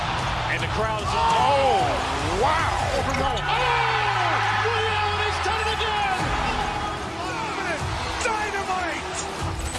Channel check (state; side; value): identical; both; correlation 1.00